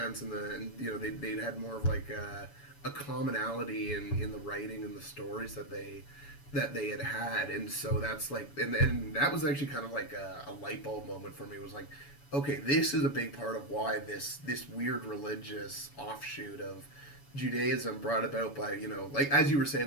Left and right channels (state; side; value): late; right; 7.1 ms